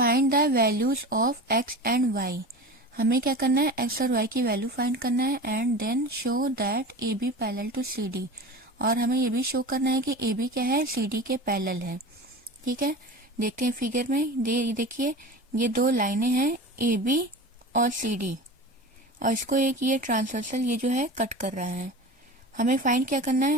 the values of x and y. हमें क्या करना है, एक्स और वाई की वैल्यू फाइंड करना है and then show that A B parallel to C D. और हमें ये भी शो करना है कि ए बी क्या है, सी डी के पैरेलल है। ठीक है, देखते हैं फिगर में। देखिए ये दो लाइनें हैं ए बी और सी डी, और इसको एक ये ट्रांसवर्सल ये जो है कट कर रहा है। हमें फाइंड क्या करना है,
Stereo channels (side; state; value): both; normal; correlation 0.32